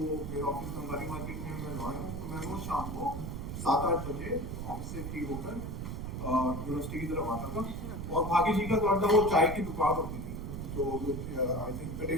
मेरा ऑफिस बंगाली मार्केट में मैं लॉयर हूँ, तो मैं रोज शाम को 7-8 बजे ऑफिस से फ्री होकर यूनिवर्सिटी की तरफ आता था। और भागी जी का तो अंदर वो चाय की दुकान होती थी, जो आई थिंक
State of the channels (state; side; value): noise; right; rumble, 5 dB below the sound